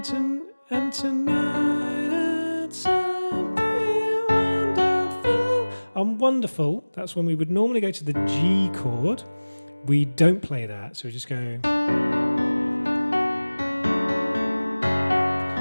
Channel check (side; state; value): both; inverted; correlation -1.00